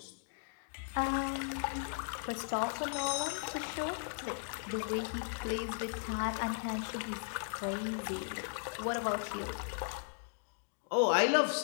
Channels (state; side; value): silent; right; digital silence